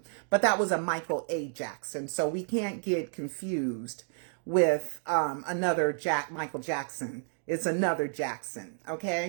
But that was a Michael A. Jackson. So we can't get confused with another Michael Jackson. It's another Jackson.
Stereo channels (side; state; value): left; silent; digital silence